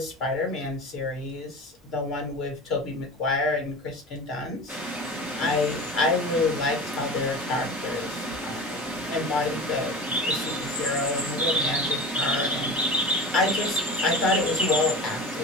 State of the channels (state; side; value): normal; both; correlation 0.33